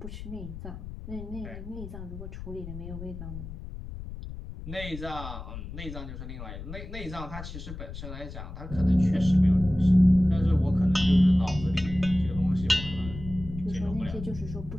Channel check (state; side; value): noise; left; rumble, 10 dB below the sound